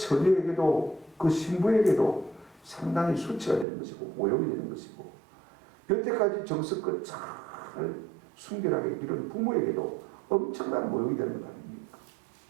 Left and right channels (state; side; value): drops out; left; at 3.7 s